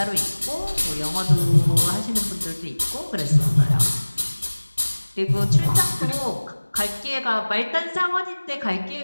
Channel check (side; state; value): both; inverted; correlation -1.00